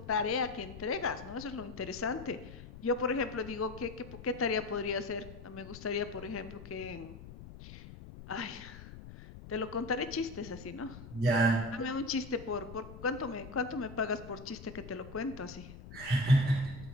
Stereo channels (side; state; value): left; noise; rumble, 14 dB below the sound